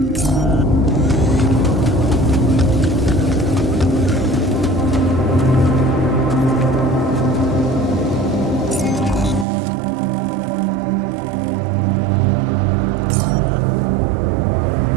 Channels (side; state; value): left; drops out; at 9.5 s